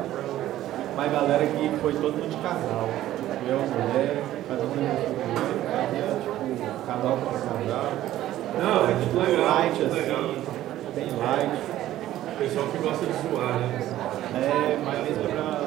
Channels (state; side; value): quieter; left; 13.7 dB